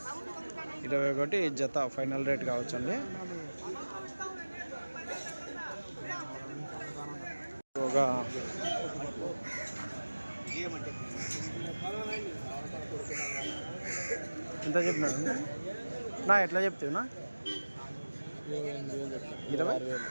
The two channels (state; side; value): inverted; both; correlation -1.00